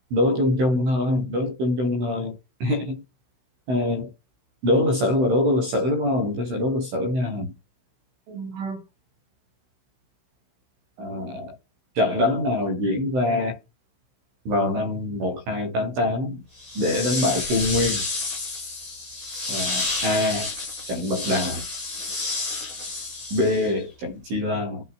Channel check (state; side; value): late; left; 16 ms